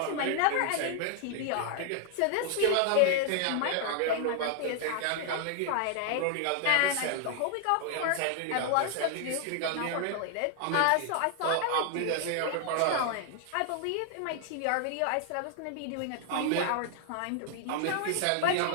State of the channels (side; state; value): both; different; correlation 0.00